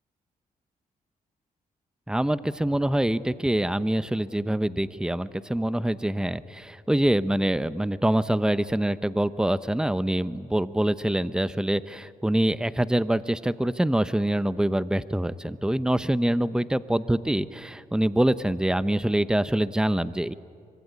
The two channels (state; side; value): normal; both; correlation 0.98